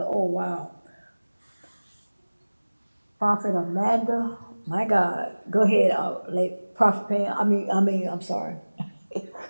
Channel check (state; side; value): inverted; both; correlation -1.00